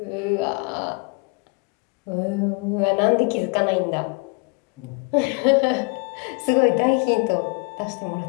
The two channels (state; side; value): quieter; right; 31.5 dB